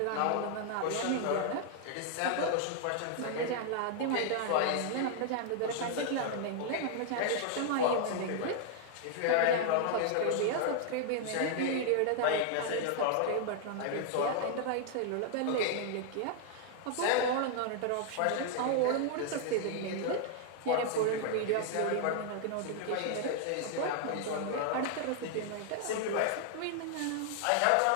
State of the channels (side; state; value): both; different; correlation 0.00